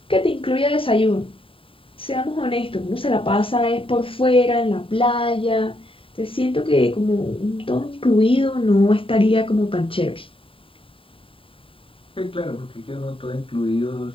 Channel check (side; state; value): right; late; 0.26 ms